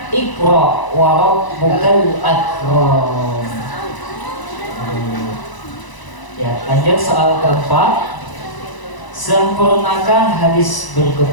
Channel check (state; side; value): late; right; 1.0 ms